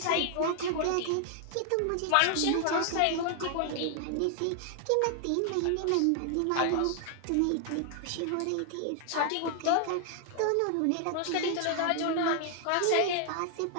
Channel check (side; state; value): both; different; correlation 0.00